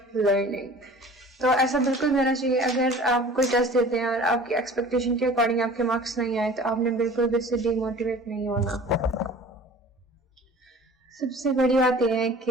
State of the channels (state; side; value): normal; both; correlation 0.44